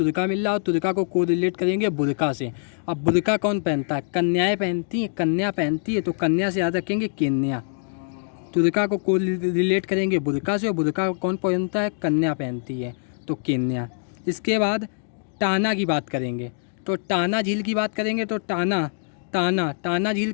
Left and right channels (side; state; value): right; silent; digital silence